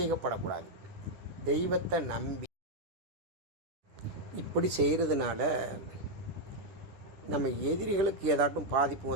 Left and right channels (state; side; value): late; left; 10 ms